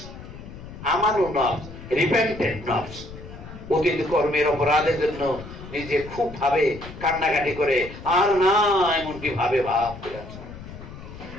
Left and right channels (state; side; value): noise; left; rumble, 14 dB below the sound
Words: আমানু নফস, রিপেন্টেন্ট নফস। অতীত কর্মের অপরাধের জন্য নিজে খুব ভাবে কান্নাকাটি করে, আর না এমনটি ভাবে ভাব করে আছে।